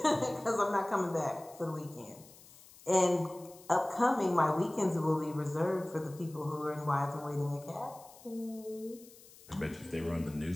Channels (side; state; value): left; noise; hiss, 22 dB below the sound